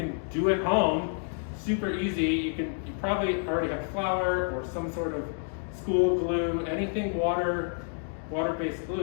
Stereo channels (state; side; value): silent; right; 56 dB below the other